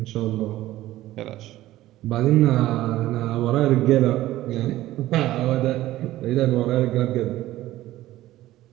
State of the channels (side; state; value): left; quieter; 15.4 dB